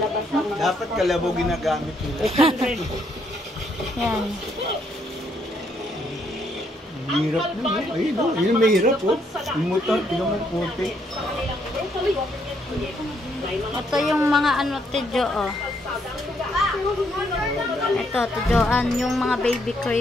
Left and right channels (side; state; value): both; normal; correlation 0.72